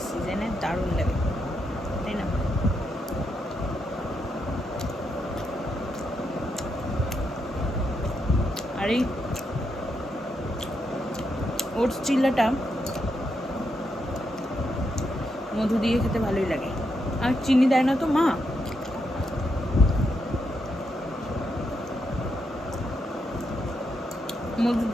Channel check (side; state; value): both; normal; correlation 0.82